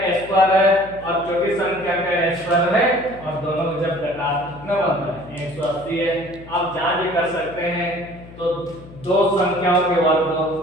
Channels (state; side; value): noise; left; hum, 18 dB below the sound